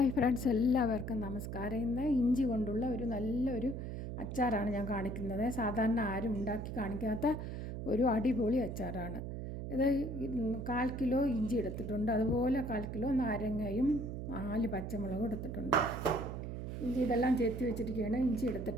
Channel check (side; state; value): right; noise; hum, 5 dB below the sound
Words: friends, എല്ലാവർക്കും നമസ്കാരം. ഇന്ന് ഇഞ്ചി കൊണ്ടുള്ള നല്ലൊരു അച്ചാറാണ് ഞാൻ കാണിക്കുന്നത്. സാധാരണ ആരും ഉണ്ടാക്കി കാണിക്കാത്ത ഒരു അടിപൊളി അച്ചാറാണ് ഇത്. 1/4 കിലോ ഇഞ്ചി എടുത്തിട്ടുണ്ട്, അതുപോലെ 1/4 കിലോ നാരങ്ങയും 4 പച്ചമുളകും എടുത്തിട്ടുണ്ട്. ഇഞ്ചി ഇതെല്ലാം ചെത്തി വെച്ചിരിക്കുകയാണ്. ഇഞ്ചി